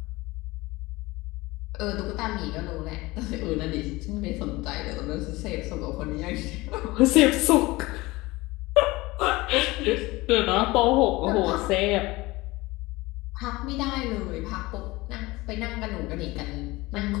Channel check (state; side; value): quieter; right; 21.0 dB